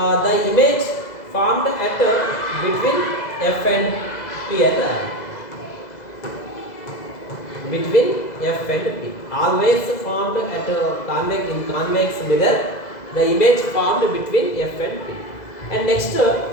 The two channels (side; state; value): right; late; 2.0 ms